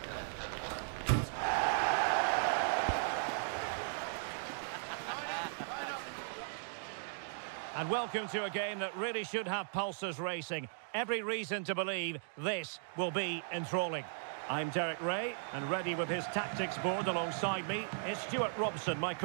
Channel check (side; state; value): left; silent; digital silence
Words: And welcome to a game that really should have pulses racing. Every reason to believe this will be enthralling. I'm Derek Ray, and ready with his tactics board alongside me is Stuart Robson, my